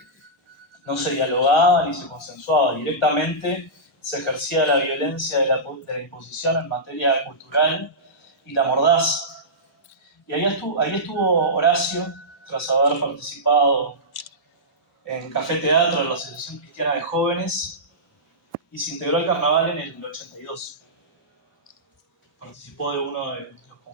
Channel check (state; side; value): normal; both; correlation -0.16